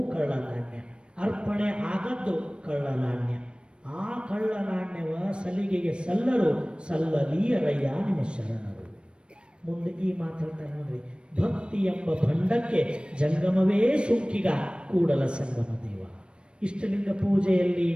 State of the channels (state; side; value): late; left; 0.056 ms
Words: ಕಳ್ಳ ನಾಣ್ಯ. ಅರ್ಪಣೆ ಆಗದ್ದು ಕಳ್ಳ ನಾಣ್ಯ. ಆ ಕಳ್ಳ ನಾಣ್ಯವ ಸಲಿಗೆಗೆ ಸಲ್ಲರು, ಸಲ್ಲಲೀಯರಯ್ಯ ನಿಮ್ಮ ಶರಣರು. ಮುಂದೆ ಈ ಮಾತಾಡ್ತಾರೆ ನೋಡ್ರಿ, ಭಕ್ತಿ ಎಂಬ ಭಂಡಕ್ಕೆ ಜಂಗಮವೇ ಸುಂಕಿಗ ಕೂಡಲ ಸಂಗಮ ದೇವ. ಇಷ್ಟಲಿಂಗ ಪೂಜೆಯಲ್ಲಿ